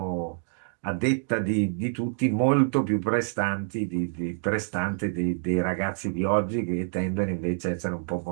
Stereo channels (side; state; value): left; silent; digital silence